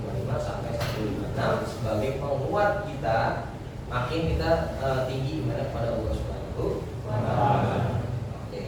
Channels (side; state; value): both; identical; correlation 1.00